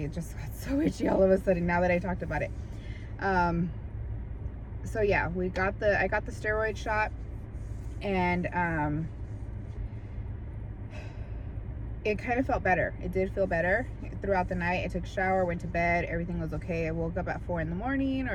it just got so itchy all of a sudden now that I talked about it. So yeah, I got the steroid shot, and it kind of felt better. It did feel better throughout the night. I took a shower, went to bed, everything was okay. I woke up at 4 in the morning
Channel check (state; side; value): identical; both; correlation 1.00